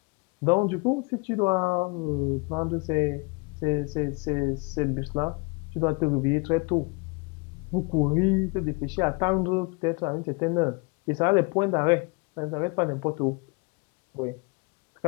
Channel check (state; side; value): quieter; right; 29.8 dB